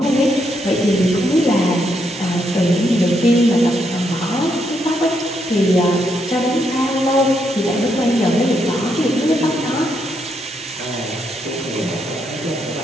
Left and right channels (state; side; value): normal; both; correlation 0.78